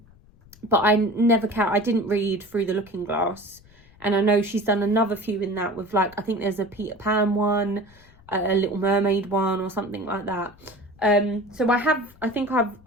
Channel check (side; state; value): left; noise; rumble, 26 dB below the sound